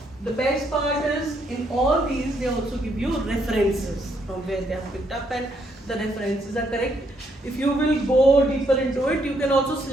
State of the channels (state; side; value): normal; both; correlation 0.73